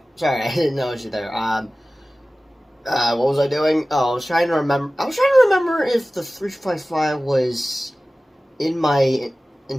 Sorry, I didn't notice you there. What was I doing? Oh, I was trying to remember. I was trying to remember if the 355 was in my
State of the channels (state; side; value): normal; both; correlation 0.97